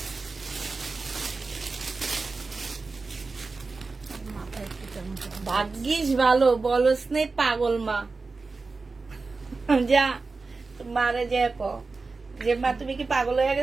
ভাগ্যিস ভালো, বলস নেই পাগল মা। যা মারে যে যে মা, তুমি কি পাগল হয়ে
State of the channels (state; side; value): quieter; left; 4.0 dB